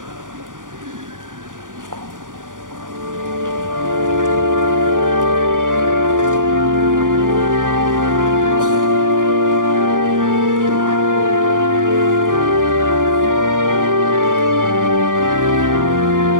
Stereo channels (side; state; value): left; late; 0.88 ms